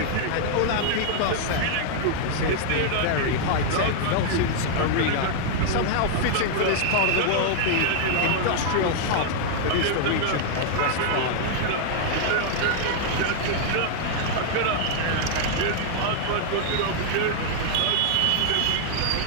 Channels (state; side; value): different; both; correlation -0.01